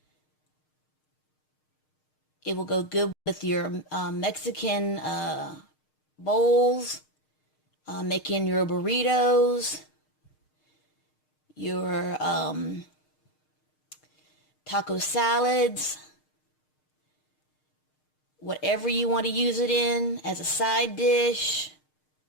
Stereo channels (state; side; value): late; right; 6.5 ms